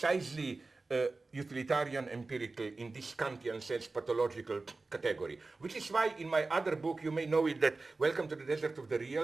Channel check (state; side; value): quieter; left; 3.6 dB